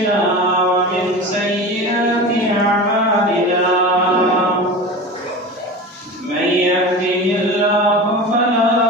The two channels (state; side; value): normal; both; correlation 0.31